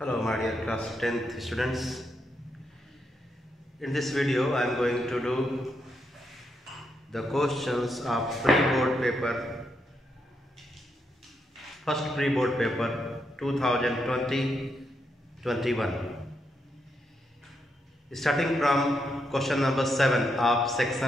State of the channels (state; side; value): normal; both; correlation 0.81